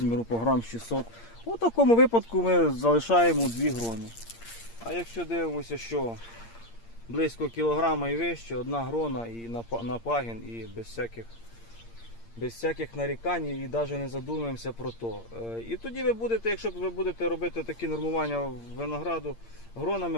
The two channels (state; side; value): late; right; 8.7 ms